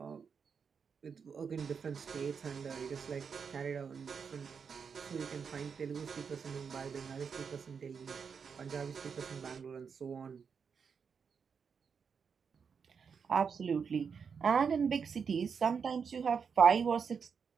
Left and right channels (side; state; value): left; quieter; 6.2 dB